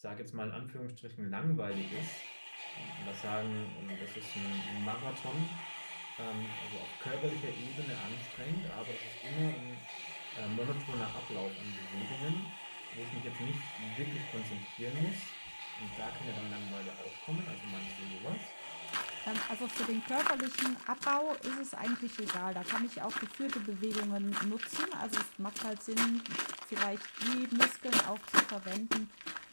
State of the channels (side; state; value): both; inverted; correlation -1.00